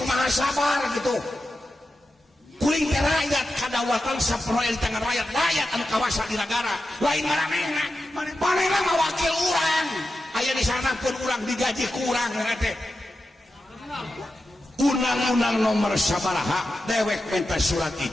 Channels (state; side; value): normal; both; correlation 0.91